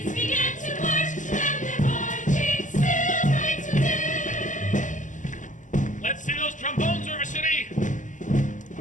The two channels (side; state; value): right; late; 0.37 ms